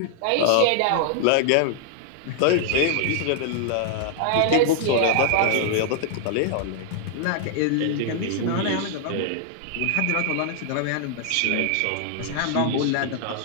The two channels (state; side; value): different; both; correlation -0.01